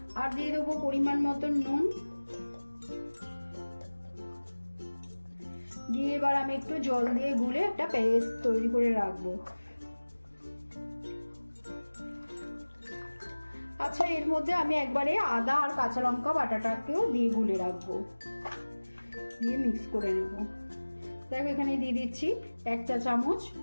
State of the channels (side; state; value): both; inverted; correlation -1.00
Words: আর দিয়ে দেবো পরিমাণ মতন নুন, দিয়ে এবার আমি একটু জল দিয়ে গুলে একটা পেস্ট তৈরি করে রাখবো। আচ্ছা, এর মধ্যে আমি একবারে আদা আর কাঁচা লঙ্কা বাটাটাকেও দিয়ে গুলে রাখবো, দিয়ে মিক্স করে নেব। দেখো, এখানে দিয়ে দিচ্ছি 1 চা চামচ